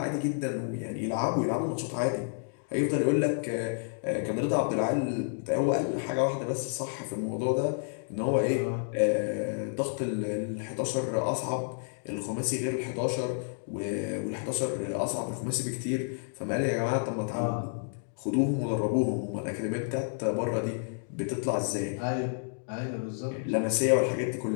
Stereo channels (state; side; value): silent; right; digital silence